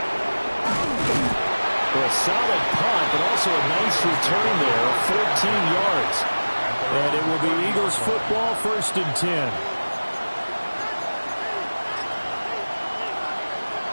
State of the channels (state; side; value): inverted; both; correlation -1.00